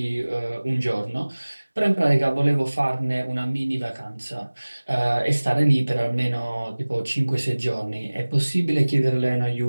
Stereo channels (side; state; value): both; inverted; correlation -1.00